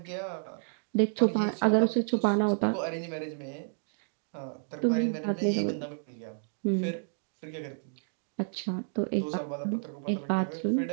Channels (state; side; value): silent; left; 57 dB below the other